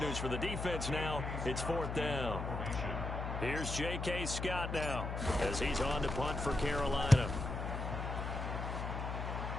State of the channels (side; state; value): left; noise; hum, 4 dB below the sound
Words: news for the defense now, it's fourth down. Here's J.K. Scott now as he's on to punt for Carolina.